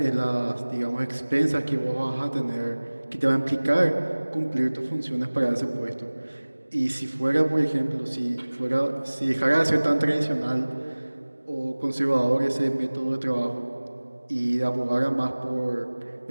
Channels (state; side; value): inverted; both; correlation -1.00